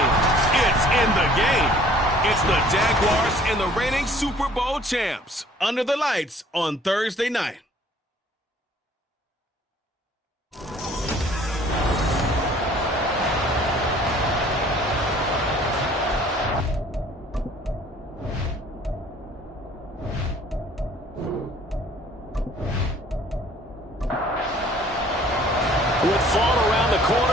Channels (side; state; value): both; normal; correlation 0.55